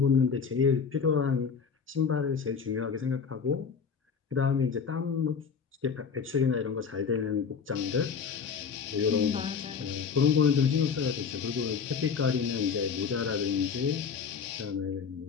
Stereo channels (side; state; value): right; quieter; 6.2 dB